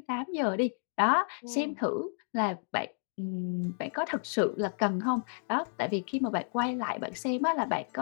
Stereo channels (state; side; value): silent; right; 57 dB below the other